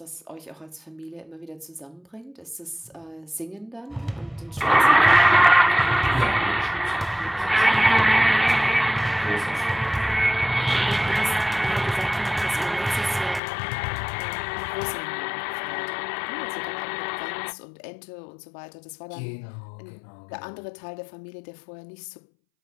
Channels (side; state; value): right; drops out; at 13.4 s